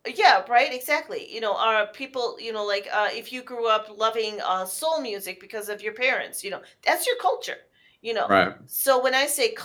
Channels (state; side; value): identical; both; correlation 1.00